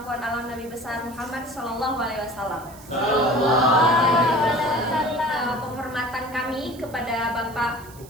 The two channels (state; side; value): noise; right; hiss, 21 dB below the sound